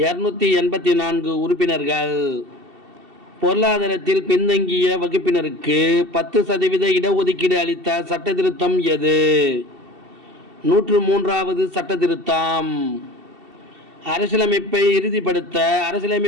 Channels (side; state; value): left; late; 2.7 ms